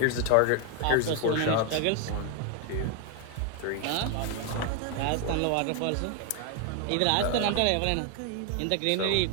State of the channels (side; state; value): both; different; correlation 0.01